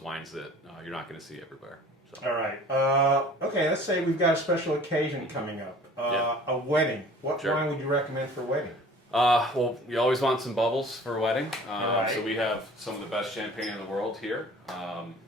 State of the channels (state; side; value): normal; both; correlation 0.47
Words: that you're not going to see everywhere. So. All right. Okay, let's say we've got a special occasion coming up. A wedding. What wine would you recommend for a wedding? Well, you always want some bubbles for a wedding. Right. So we have some of the best champagne in the world here.